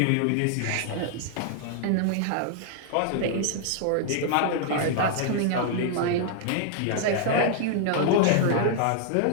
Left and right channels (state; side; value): different; both; correlation -0.01